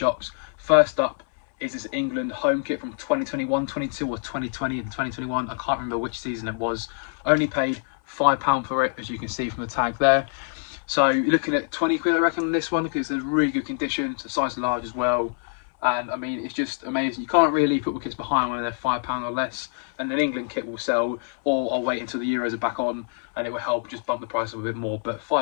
First up is this England home kit from 2021, 22, or 2020 and 2021. I can't remember which season it was. Only paid £5 for it, as you can see from the tag there. So you're looking at 20 quid, I reckon, on this one because it's in really good condition. It's a size large as well. And I mean, it's just amazing. You can't really leave football kits behind when they're £5 or less. And an England kit will sell, or I'll wait until the Euros are back on and it will help just bump the price up a bit more. But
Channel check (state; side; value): silent; right; 62 dB below the other